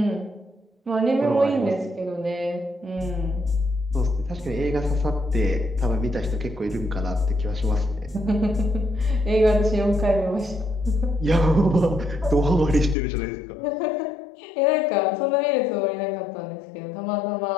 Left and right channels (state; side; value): drops out; right; at 13.0 s